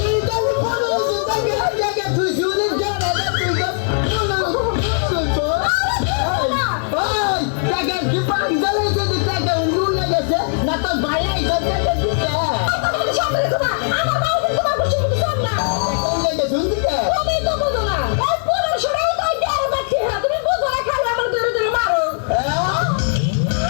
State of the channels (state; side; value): silent; right; digital silence